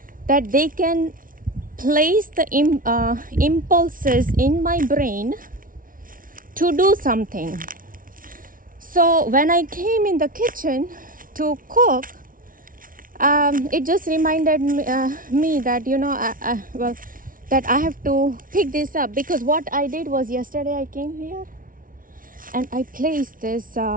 that they can place the impulses in my brain to do something. So when I came in the kitchen to cook, it just reminded me that, you know, that I have to pick this up. Because what I did was, yesterday I came here and I placed this.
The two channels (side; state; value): left; late; 0.40 ms